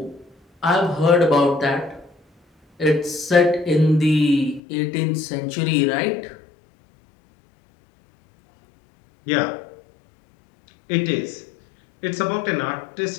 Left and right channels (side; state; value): right; drops out; at 4.6 s